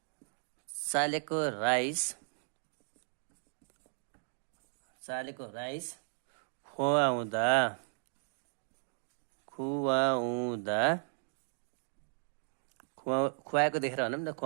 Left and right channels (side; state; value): left; silent; digital silence